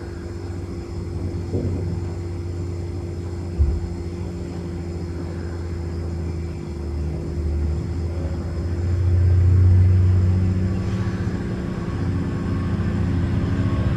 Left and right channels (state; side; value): identical; both; correlation 1.00